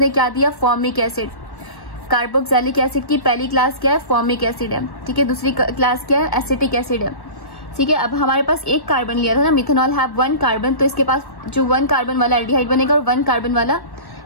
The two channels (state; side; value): late; right; 1.1 ms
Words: क्या दिया, फॉर्मिक एसिड। कार्बोक्सिलिक एसिड की पहली क्लास क्या है, फॉर्मिक एसिड है, ठीक है, दूसरी क्लास क्या है, एसिटिक एसिड है। ठीक है। अब हमारे पास एक कार्बन लिया था ना, मिथेनॉल हैव 1 कार्बन, तो इसके पास जो 1 कार्बन वाला एल्डिहाइड बनेगा और 1 कार्बन वाला